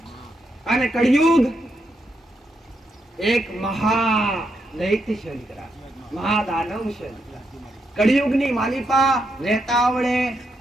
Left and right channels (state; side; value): normal; both; correlation 0.81